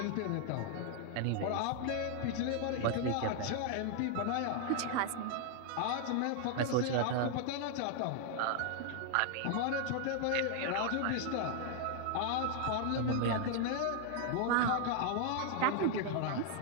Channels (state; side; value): different; both; correlation 0.00